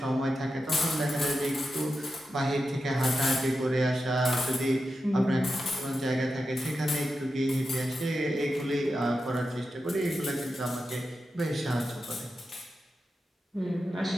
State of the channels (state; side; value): normal; both; correlation 0.90